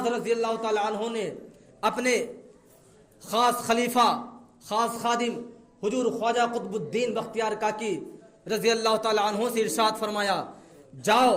رضی اللہ تعالیٰ عنہ نے اپنے خاص خلیفہ خاص خادم حضور خواجہ قطب الدین بختیار کاکی رضی اللہ تعالیٰ عنہ سے ارشاد فرمایا، جاؤ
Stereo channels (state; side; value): identical; both; correlation 1.00